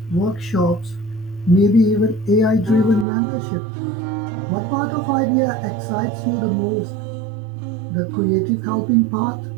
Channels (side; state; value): left; drops out; at 3.1 s